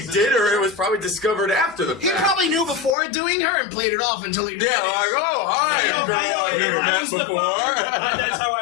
did, or it was probably discovered after the He fact. probably knew before doing her and played it off until he. Yeah, like, oh, hi, girl I've never If I met was the before. father, that's how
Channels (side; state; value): right; drops out; at 3.0 s